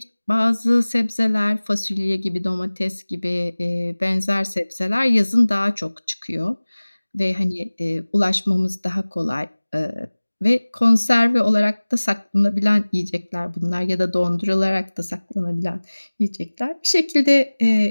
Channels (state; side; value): inverted; both; correlation -1.00